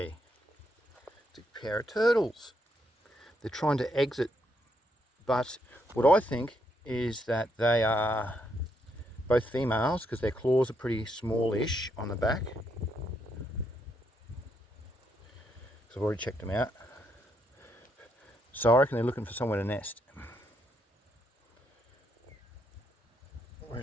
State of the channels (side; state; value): both; normal; correlation 0.76